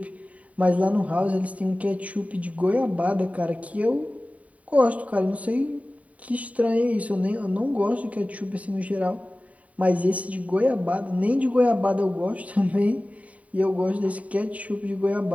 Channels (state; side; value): late; left; 0.068 ms